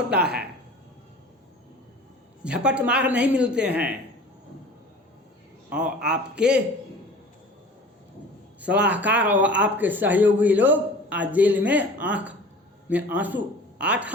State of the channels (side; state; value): both; normal; correlation 0.42